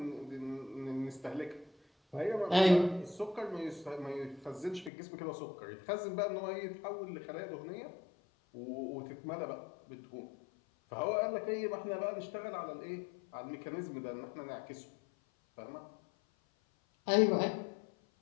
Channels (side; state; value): right; drops out; at 4.9 s